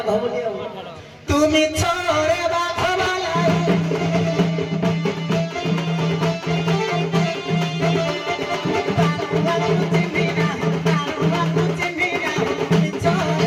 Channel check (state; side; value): identical; both; correlation 1.00